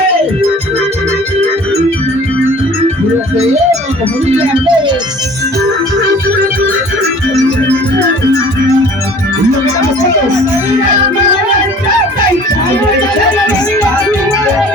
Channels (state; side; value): normal; both; correlation 0.48